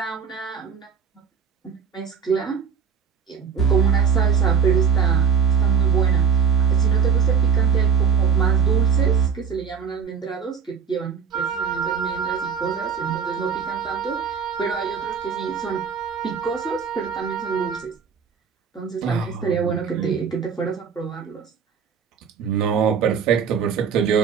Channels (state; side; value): quieter; left; 6.9 dB